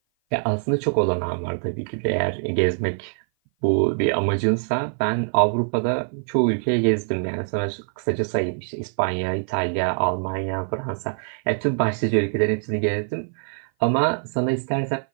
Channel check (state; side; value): silent; left; 57 dB below the other